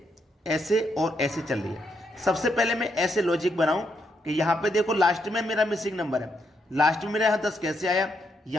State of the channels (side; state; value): both; normal; correlation 0.79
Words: ऐसे और ऐसे चल रही है। सबसे पहले मैं ऐसे लॉजिक बनाऊं कि यहाँ पे देखो लास्ट में मेरा मिसिंग नंबर है। लास्ट में मेरा यहाँ 10 कैसे आया,